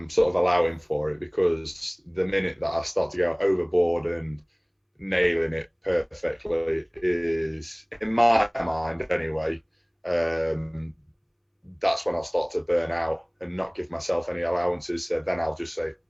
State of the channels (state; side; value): identical; both; correlation 1.00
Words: sort of allowing for it, because the minute that I start to go overboard and nailing it perfectly is, in my mind anyway, that's when I'll start to burn out and not give myself any allowances. So then I'll just say,